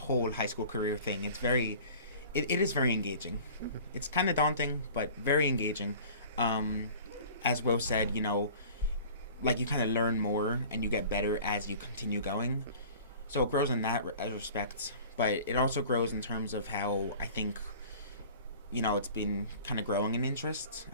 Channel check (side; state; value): both; inverted; correlation -0.44